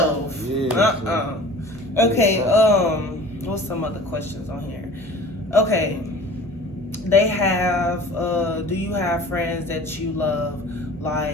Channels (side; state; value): both; normal; correlation 0.43